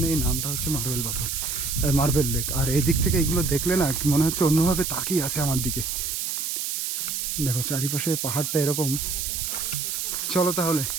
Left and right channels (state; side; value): noise; right; hiss, 2 dB below the sound